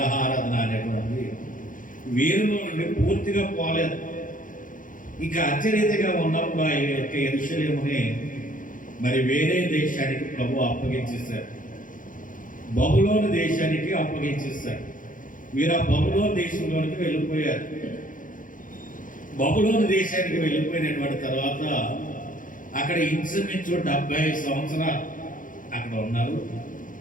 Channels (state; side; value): late; right; 0.39 ms